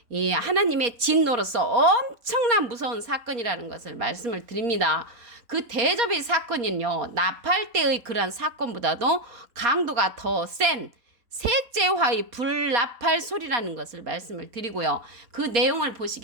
이 하나님의 진노로서 엄청난 무서운 사건이라는 것을 말씀을 드립니다. 그 대접의 사건은요, 나팔 때의 그러한 사건보다도 강도가 더 센 셋째 화의 불나팔 소리라는 것을 말씀을 드리고요. 그 내용을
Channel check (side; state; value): left; late; 4.2 ms